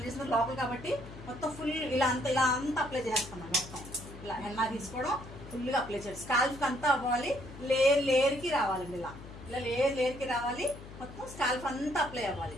చేసిన లోపల కాబట్టి మొత్తం ఫుల్ ఇలా అంతా అప్లై చేస్తాం మొత్తం. ఇలా హెన్నా తీసుకోవడం ఫుల్గా అప్లై చేయడం, స్కాల్ఫ్కి అంతా అవ్వాలి, లేయర్కి రావాలండి. ఇలా ఇలా లేయర్కి రావాలి, మొత్తం స్కాల్ఫ్ అంతా అప్లై అవ్వాలి.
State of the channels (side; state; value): left; noise; hum, 15 dB below the sound